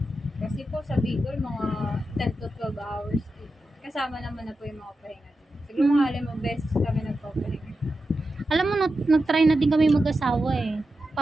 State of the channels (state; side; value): normal; both; correlation 0.90